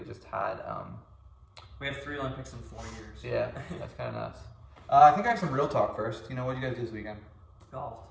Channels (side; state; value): both; identical; correlation 1.00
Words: just had... We have 3 Olympics in 4 years. Yeah, that's kind of nuts. I think I have some real talk first. You know, what did you guys do this weekend? Golf.